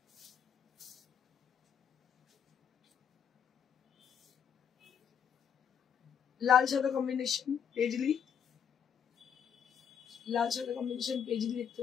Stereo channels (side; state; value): right; quieter; 8.1 dB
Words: লাল সাদা কম্বিনেশন পেজলি, লাল সাদা কম্বিনেশন পেজলি দেখতে